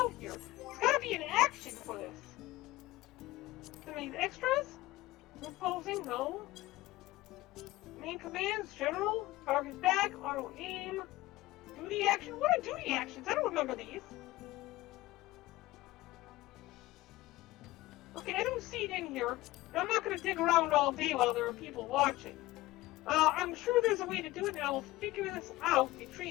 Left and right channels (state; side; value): quieter; right; 18.1 dB